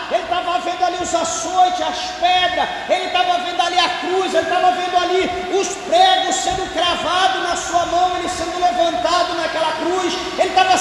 ele estava vendo ali os açoites, as pedras, ele estava vendo ali a cruz, ele estava vendo ali os pregos sendo cravados na sua mão, ele sendo levantado naquela cruz, ele estava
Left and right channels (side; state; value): both; identical; correlation 1.00